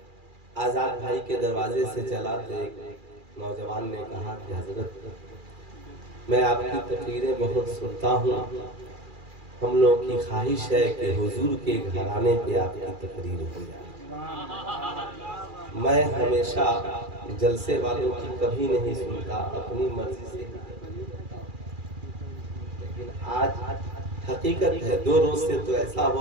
آزاد بھائی کے دروازے سے چلا تو ایک نوجوان نے کہا کہ حضرت میں آپ کی تقریریں بہت سنتا ہوں, ہم لوگوں کی خواہش ہے کہ حضور کے گھرانے پہ آپ کی تقریر ہو جائے. میں ہمیشہ جلسے والوں کی کبھی نہیں سنتا, اپنی مرضی سے, لیکن آج حقیقت ہے 2 روز سے تو ایسا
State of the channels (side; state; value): left; late; 2.4 ms